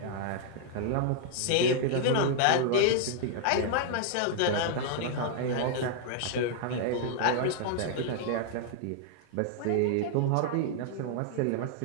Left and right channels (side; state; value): both; different; correlation -0.01